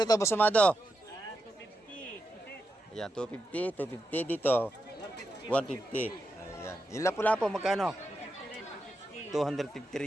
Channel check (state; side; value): normal; both; correlation 0.87